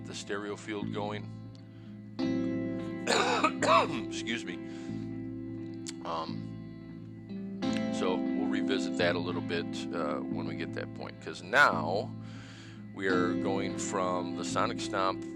the stereo field going. Excuse me. So we'll revisit that a little bit when we get that point, because now We are going from the Sonic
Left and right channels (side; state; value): both; identical; correlation 1.00